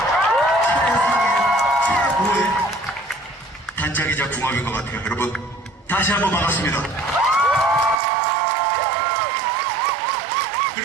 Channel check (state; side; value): drops out; left; at 8.0 s